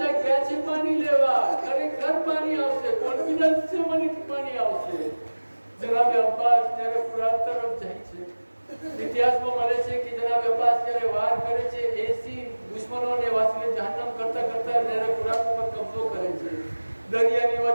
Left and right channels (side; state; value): both; inverted; correlation -1.00